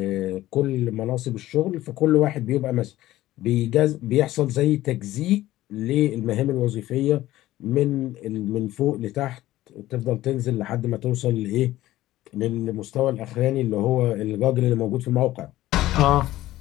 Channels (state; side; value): quieter; right; 15.5 dB